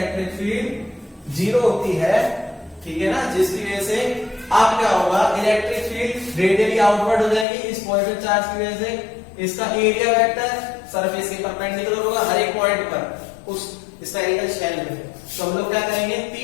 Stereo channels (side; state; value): right; drops out; at 7.5 s